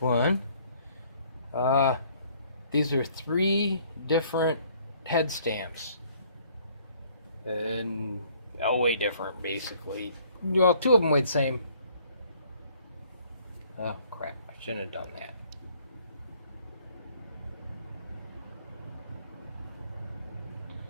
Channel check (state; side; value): inverted; both; correlation -0.60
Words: These are 3 different head stamps. And way different, basically. Well, 2 of them weigh the same. Oh, crap. I shouldn't have done that.